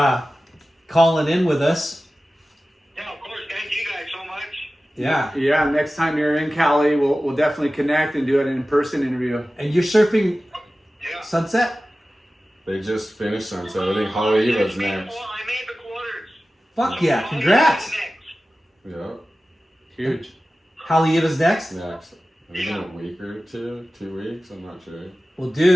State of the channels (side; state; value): both; normal; correlation 0.96